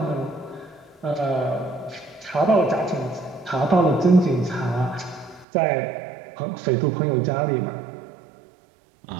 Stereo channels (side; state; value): left; drops out; at 5.5 s